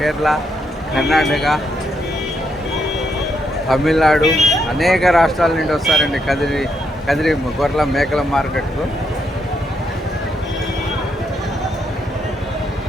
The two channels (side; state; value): both; normal; correlation 0.78